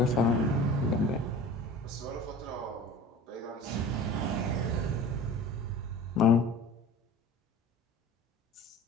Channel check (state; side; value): normal; both; correlation 0.39